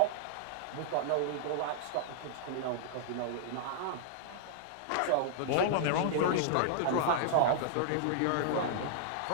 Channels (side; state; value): both; different; correlation -0.01